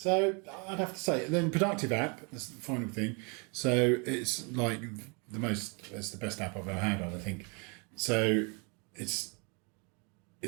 I'd have to say, then Productive app, that's the final thing. So it's like it's the best app I've ever had on, I think. So it's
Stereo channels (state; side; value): quieter; left; 33.6 dB